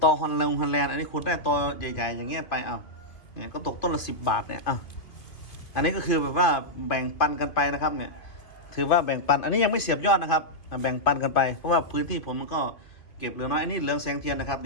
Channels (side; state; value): right; late; 2.8 ms